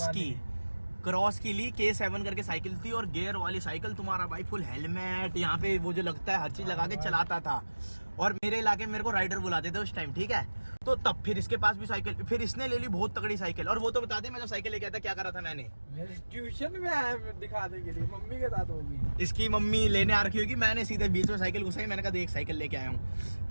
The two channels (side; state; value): both; inverted; correlation -1.00